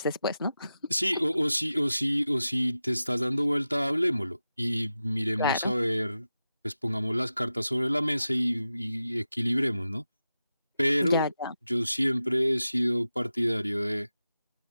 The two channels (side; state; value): both; inverted; correlation -0.91